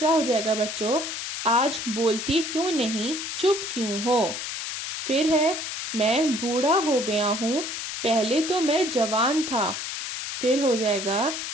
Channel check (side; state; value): left; noise; hiss, 5 dB below the sound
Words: हो जाएगा बच्चों, आज बोलती क्यों नहीं, चुप क्यों हो। फिर है मैं बूढ़ा हो गया हूँ, पहले तो मैं जवान था। फिर हो जाएगा